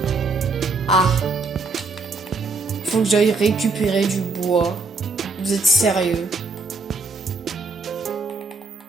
Ah. Faut que j'aille récupérer du bois. Vous êtes sérieux?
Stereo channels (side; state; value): left; quieter; 3.9 dB